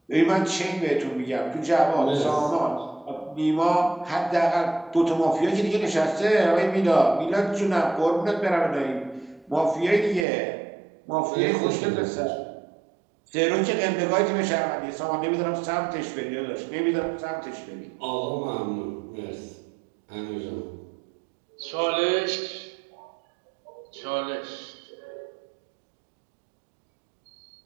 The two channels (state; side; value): drops out; left; at 10.2 s